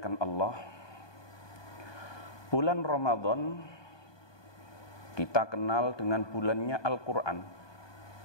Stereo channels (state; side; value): late; right; 1.2 ms